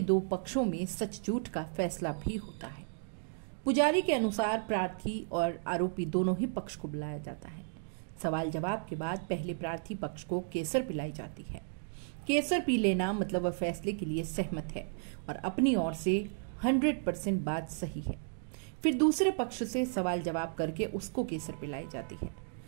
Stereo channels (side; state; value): left; silent; digital silence